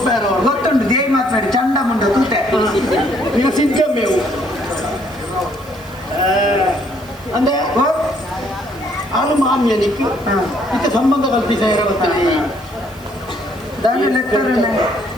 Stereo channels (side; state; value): right; noise; hiss, 24 dB below the sound